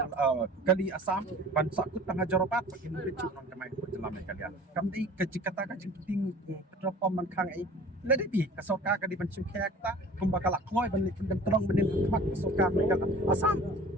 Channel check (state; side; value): normal; both; correlation 0.45